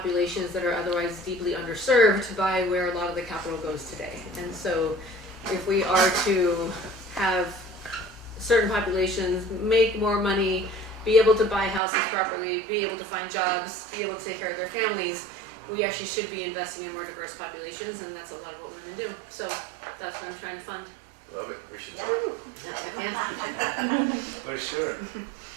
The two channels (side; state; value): left; drops out; at 11.8 s